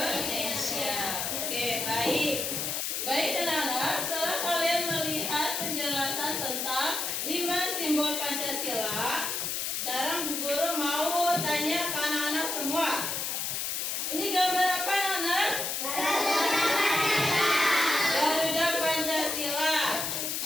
Oke, baik. Baik anak-anak, setelah kalian melihat penjelasan tentang 5 simbol Pancasila, sekarang Bu Guru mau tanya ke anak-anak semua. Ini gambar apa anak-anak? Garuda Pancasila.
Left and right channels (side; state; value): left; noise; hiss, 1 dB below the sound